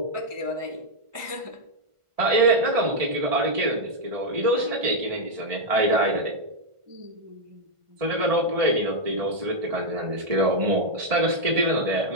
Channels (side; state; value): left; late; 1.5 ms